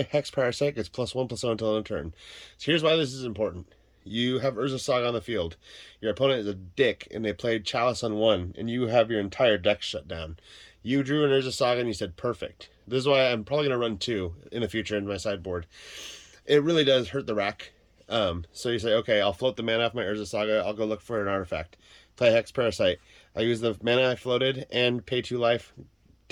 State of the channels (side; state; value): both; identical; correlation 1.00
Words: Hex Parasite gets +1/+0 until end of turn. So here's why this is important. You have Urza Saga on the field. Your opponent is a dick, and they played Chalice on 1, and you have your entire deck shut down. You drew an Urza Saga, and you said, perfect. This is why I'm probably going to run 2 in the future in my sideboard. It really does hurt the rack. So you say, okay, I'll float the mana off my Urza Saga. I'll go look for an artifact. Play Hex Parasite. I use the mana I floated and pay 2 life.